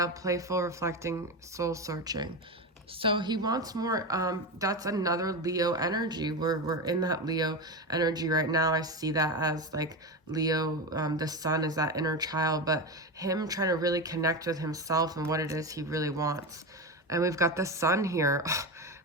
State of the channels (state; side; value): normal; both; correlation 0.19